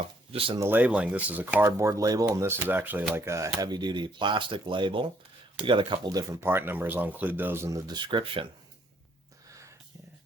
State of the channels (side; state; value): both; normal; correlation 0.68